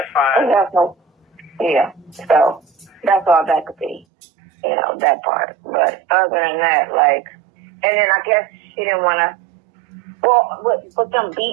fine. That's no, yeah. So that's all that could be, you know, that part. But other than that, like, and then I guess she didn't want to, well, with them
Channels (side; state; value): left; drops out; at 4.0 s